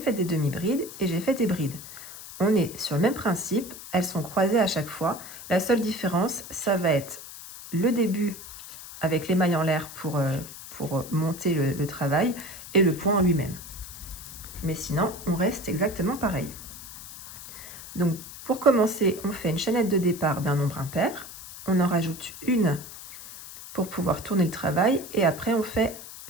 des demi-brides et j'ai fait des brides. On est sur le même principe, elles sont croisées à chaque fois. La seule différence, ça va être le début avec les mailles en l'air pour monter le travail et le point en lui-même. Mais sinon, on reste exactement pareil. Donc, pour commencer, on fait une chaînette de départ d'un nombre impair. On en rajoute une pour pouvoir tourner le travail et après, on fait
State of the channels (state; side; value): noise; left; hiss, 13 dB below the sound